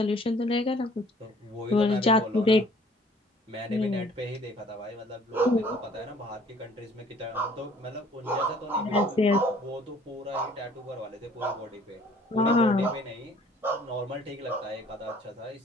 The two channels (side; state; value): both; normal; correlation 0.55